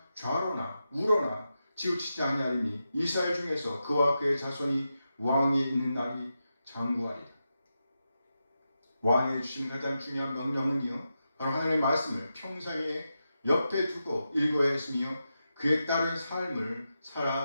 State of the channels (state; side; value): inverted; both; correlation -0.89